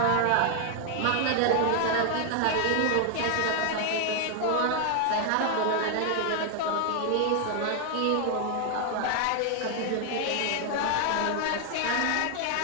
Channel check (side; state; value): both; different; correlation 0.00